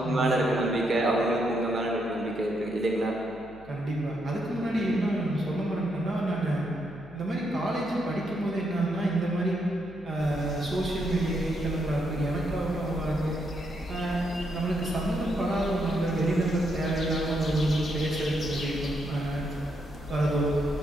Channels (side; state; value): left; noise; hum, 21 dB below the sound